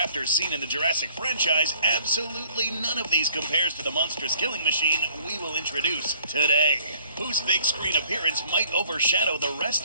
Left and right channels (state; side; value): inverted; both; correlation -0.59